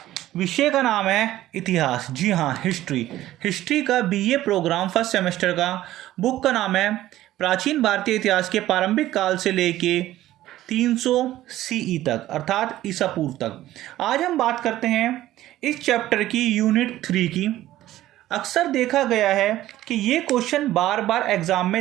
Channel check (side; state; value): left; quieter; 14.5 dB